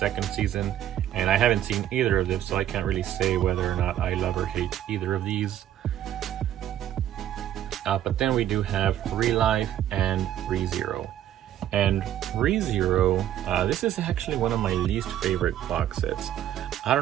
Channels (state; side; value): quieter; left; 11.5 dB